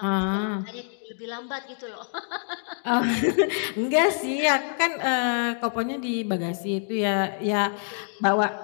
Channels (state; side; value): silent; right; 56 dB below the other